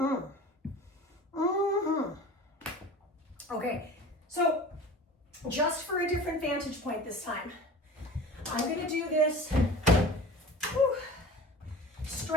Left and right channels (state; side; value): normal; both; correlation 0.39